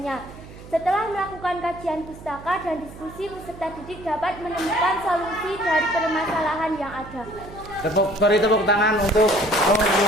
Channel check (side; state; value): right; noise; hum, 17 dB below the sound